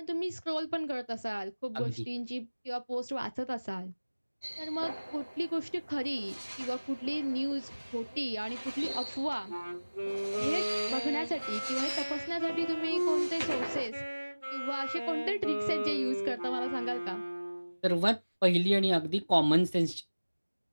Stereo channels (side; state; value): both; inverted; correlation -1.00